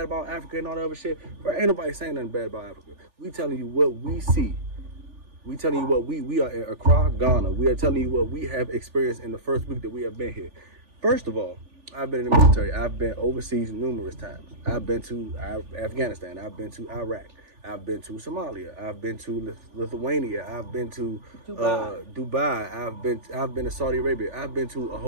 about Africa and all that other shit. Bro, ain't nobody saying nothing bad about Africa. We telling you what we see. We telling you what we are in Accra, Ghana. We are telling you what we have experienced in the first week that we have been here. First of all, I've been in the military. I've been overseas numerous times. I've been to Afghanistan. I've been to Iraq. I've been to Somalia. I've been to Lithuania. I've been to Dubai. I've been to Saudi Arabia. I've been to a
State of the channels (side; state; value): left; late; 3.4 ms